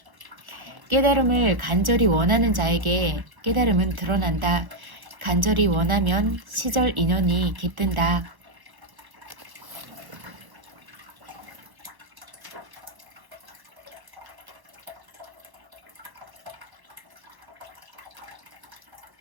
깨달음을 간절히 원하는 자에게 깨달음은 드러난다. 간절히 원하면 시절 인연이 깃든다.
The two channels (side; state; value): left; late; 1.2 ms